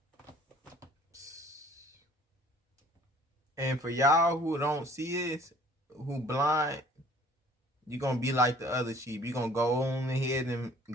And for y'all who don't see this, who blind, you're going to be like the other sheep. You're going to go on ahead and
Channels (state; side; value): normal; both; correlation 0.54